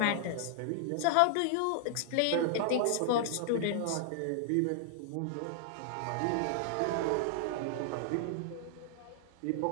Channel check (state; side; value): different; both; correlation -0.01